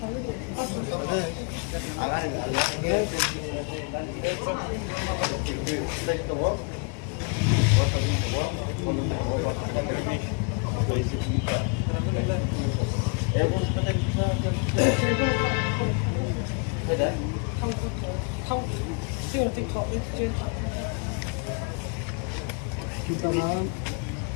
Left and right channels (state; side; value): quieter; right; 35.0 dB